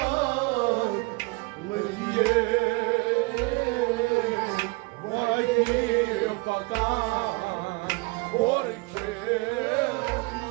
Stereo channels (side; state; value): left; quieter; 26.7 dB